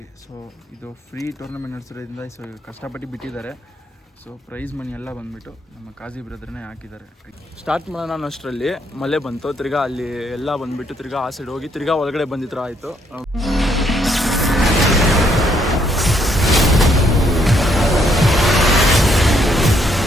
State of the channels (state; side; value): normal; both; correlation 0.71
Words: ಸೊ ಇದು ಫ್ರೀ ಟೂರ್ನಮೆಂಟ್ ನಡೆಸಿರೋದ್ರಿಂದ ಸೊ ಕಷ್ಟಪಟ್ಟು ಬಿಟ್ಟಿದ್ದಾರೆ. ಸೊ ಪ್ರೈಸ್ ಮನಿ ಎಲ್ಲ ಬಂದುಬಿಟ್ಟು ನಮ್ಮ ಕಾಜಿ ಬ್ರದರ್ನೇ ಹಾಕಿದ್ದಾರೆ. ಸ್ಟಾರ್ಟ್ ಮಾಡೋಣ ಅಷ್ಟರಲ್ಲಿ ಮಳೆ ಬಂತು. ತಿರ್ಗಾ ಅಲ್ಲಿ ಎಲ್ಲ ಬಂದುಬಿಟ್ಟು ತಿರ್ಗಾ ಆ ಸೈಡ್ ಹೋಗಿ ತಿರ್ಗಾ ಒಳಗಡೆ ಬಂದಿದ್ರು ಆಯಿತು.